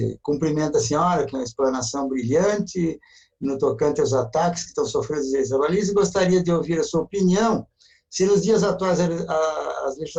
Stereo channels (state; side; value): identical; both; correlation 1.00